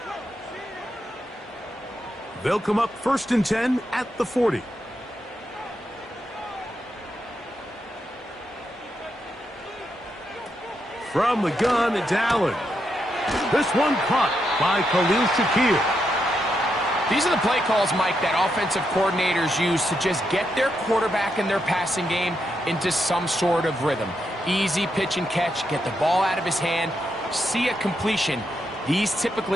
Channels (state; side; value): normal; both; correlation 0.82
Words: They'll come up 1st and 10 at the 40. From the gun, it's Allen. This one caught by Khalil Shakir. These are the play calls, Mike, that offensive coordinators use to just get their quarterback and their passing game into some sort of rhythm. Easy pitch and catch, get the ball out of his hand, see a completion. These